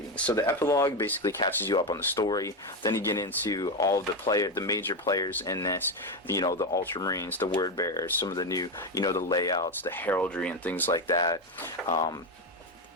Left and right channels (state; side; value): normal; both; correlation 0.12